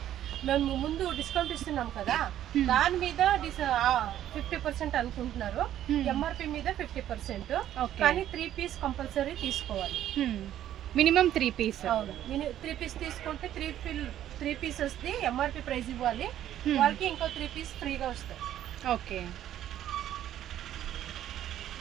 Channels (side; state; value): left; quieter; 11.7 dB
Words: మేము ముందు డిస్కౌంట్ ఇస్తున్నాం కదా, దాని మీద 50% అనుకుంటున్నారు. ఎంఆర్పి మీద 50%. కానీ 3 పీస్ కంపల్సరీ తీసుకోవాలి. Minimum 3 piece. అవును, 3 పీస్ తీసుకుంటే 3 పీసెస్ ది ఎంఆర్పి ప్రైస్ ఇవ్వాలి. వాళ్ళకి ఇంకో 3 పీస్ ఫ్రీగా వస్తాయి. ఓకే.